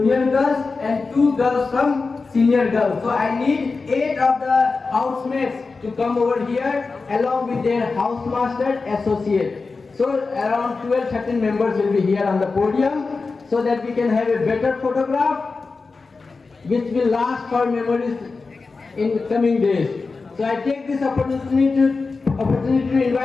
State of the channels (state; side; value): quieter; right; 4.2 dB